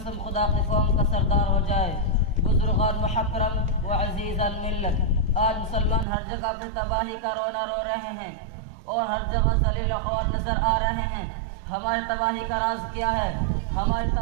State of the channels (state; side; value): drops out; left; at 6.1 s